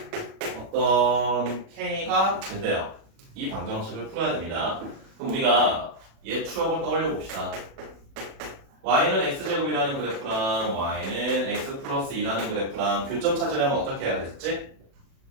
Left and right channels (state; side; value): late; left; 36 ms